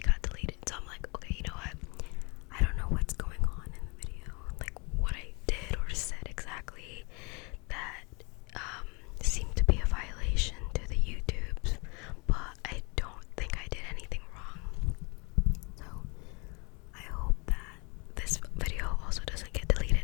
got deleted. So I'm like, okay, you know what? I don't know what's going on in the video, like what I did or said exactly that seemed to be a violation to the YouTubes, but I don't think I did anything wrong. So I hope that this video also doesn't get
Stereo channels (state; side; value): quieter; right; 30.1 dB